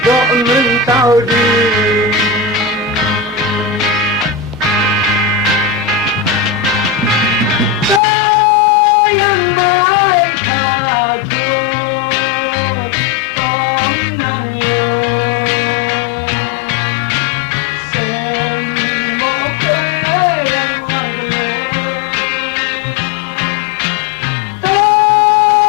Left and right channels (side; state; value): right; drops out; at 8.0 s